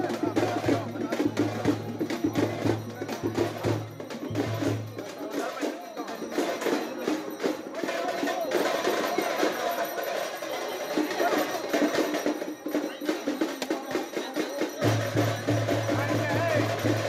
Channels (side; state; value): both; identical; correlation 1.00